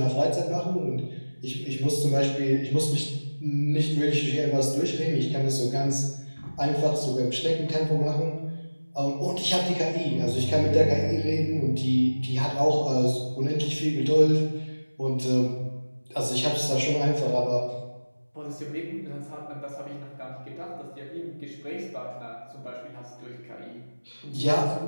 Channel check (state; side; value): inverted; both; correlation -1.00